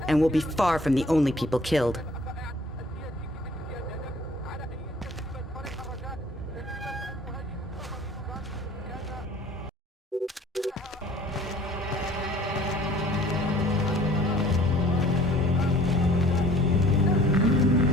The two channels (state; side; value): normal; both; correlation 0.53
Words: and we'll be far from the only people killed.